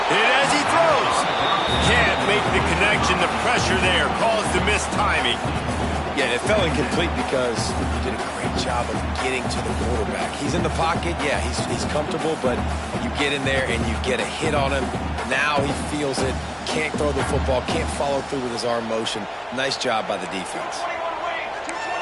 Hit as he throws. Can't make the connection. The pressure there caused the missed timing. Yeah, it fell incomplete because he did a great job of getting to the quarterback. He's in the pocket. Yeah, he's comfortable, but you get in there and you get a hit on him. Now he feels it. Can't throw the football. Can't follow through with his arm motion. Nice job by the defense.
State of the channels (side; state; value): both; identical; correlation 1.00